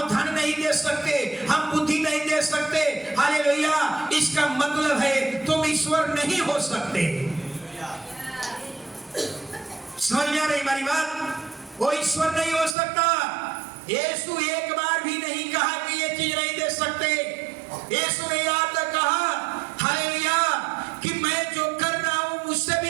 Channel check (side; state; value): left; drops out; at 12.8 s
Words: धन नहीं दे सकते, हम बुद्धि नहीं दे सकते, हालेलुया, इसका मतलब है तुम ईश्वर नहीं हो सकते। समझ में आ रही हमारी बात? वो ईश्वर नहीं हो सकता। यीशु एक बार भी नहीं कहा कि ये चीज नहीं दे सकते। यीशु ने याद कहा हालेलुया कि मैं जो कर रहा हूं मुझसे